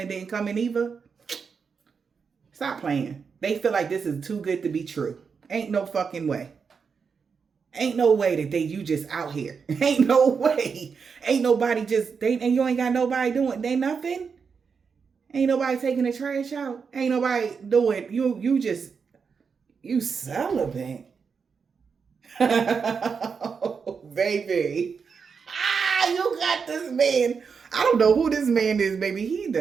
didn't come in either? Stop playing. They feel like this is too good to be true. Ain't no fucking way. Ain't no way that you just out here. Ain't no way. Ain't nobody and you ain't got nobody doing, they nothing. Ain't nobody taking the trash out. Ain't nobody doing, you celibate. Oh, baby. You got this man. I don't know who this man is, baby.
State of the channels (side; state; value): left; quieter; 5.8 dB